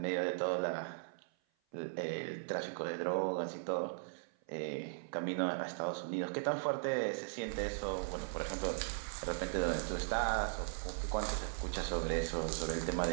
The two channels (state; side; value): silent; left; 52 dB below the other